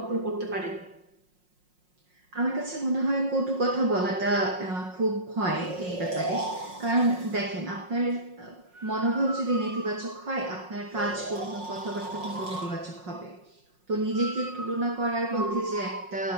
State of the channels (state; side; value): late; left; 5.5 ms